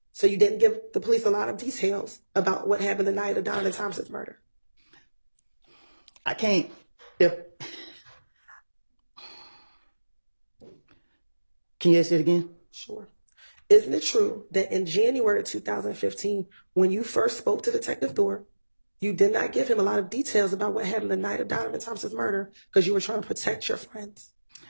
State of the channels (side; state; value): both; inverted; correlation -1.00